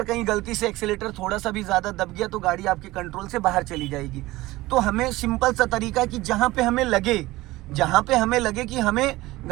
कहीं गलती से एक्सीलेटर थोड़ा सा भी ज़्यादा दब गया तो गाड़ी आपके कंट्रोल से बाहर चली जाएगी। तो हमें सिंपल सा तरीका है कि जहाँ पे हमें लगे कि हमें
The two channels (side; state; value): left; quieter; 18.7 dB